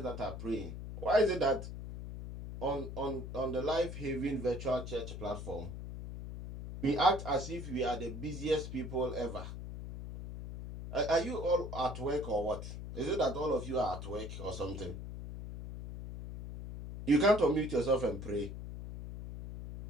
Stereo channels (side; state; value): left; noise; hum, 8 dB below the sound